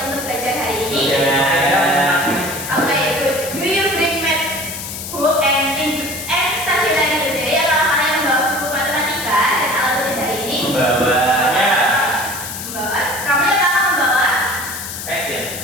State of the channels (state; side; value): noise; left; hiss, 8 dB below the sound